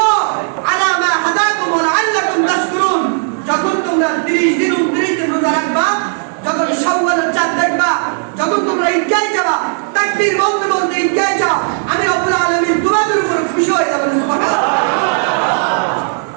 আলা মা হাদাকুম ওয়া লাআল্লাকুম তাশকুরুন। যখন তোমরা 30 দিন 29 দিন রোজা রাখবা, যখন শাওয়ালের চাঁদ দেখবা, যখন তোমরা ঈদগাহে যাবা, তাকবীর বলতে বলতে ঈদগাহে যাও, আমি রব্বুল আলামিন তোমাদের উপর খুশি হয়ে যাবেন। সুবহানাল্লাহ।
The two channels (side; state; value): left; silent; 56 dB below the other